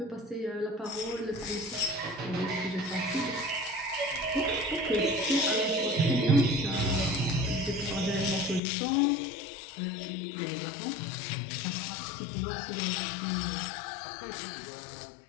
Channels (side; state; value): right; drops out; at 8.6 s